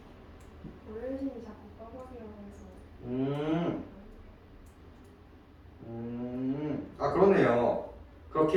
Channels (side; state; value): both; identical; correlation 1.00